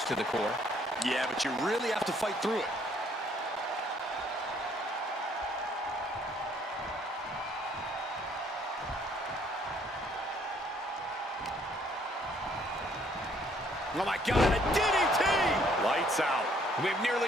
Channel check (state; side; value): normal; both; correlation 0.64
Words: to the core. Yeah, but you really have to fight through it. Oh my God, a DDT! Lights out. We have